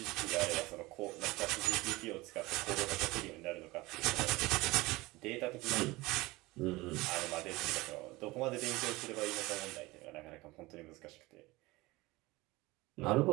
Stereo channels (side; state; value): left; quieter; 21.1 dB